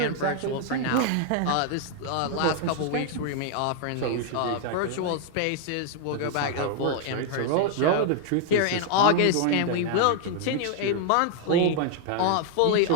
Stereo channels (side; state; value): both; different; correlation 0.00